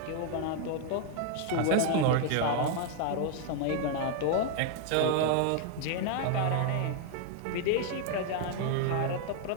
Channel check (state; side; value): different; both; correlation 0.00